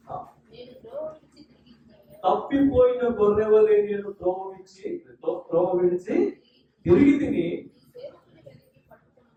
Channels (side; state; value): both; identical; correlation 1.00